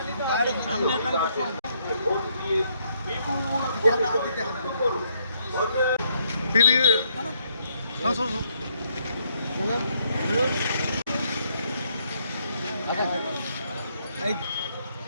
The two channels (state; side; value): inverted; both; correlation -0.72